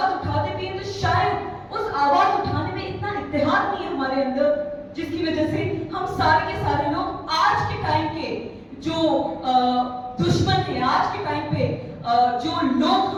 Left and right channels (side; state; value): both; identical; correlation 1.00